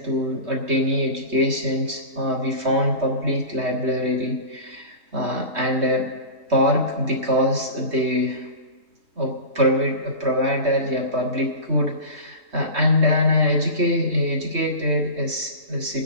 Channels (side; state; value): left; late; 3.2 ms